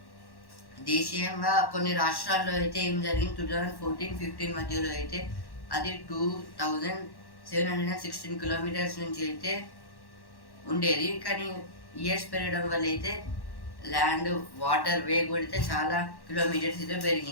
దేశీయంగా కొన్ని రాష్ట్రాల్లో అయితే ఏం జరిగింది, 2014-15 మధ్యలో అయితే అది 2716 కిలోమీటర్స్ నుంచి అయితే ఉండేది. కానీ ఇయర్స్ పెరగడం వల్ల అయితే ల్యాండ్ వాటర్ వే కూడా అయితే చాలా కిలోమీటర్స్ అయితే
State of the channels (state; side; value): late; right; 1.1 ms